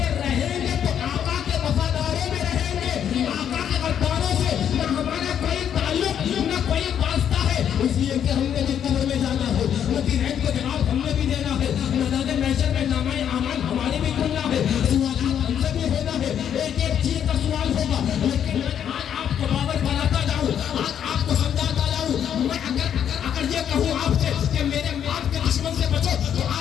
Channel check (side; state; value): right; quieter; 9.1 dB